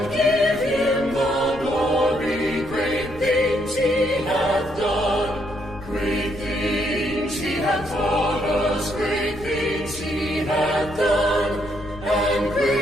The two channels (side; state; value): left; noise; rumble, 16 dB below the sound